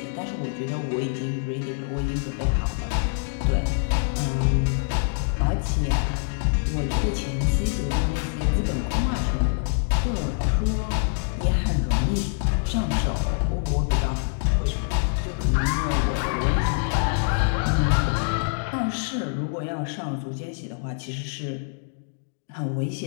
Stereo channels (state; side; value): silent; right; digital silence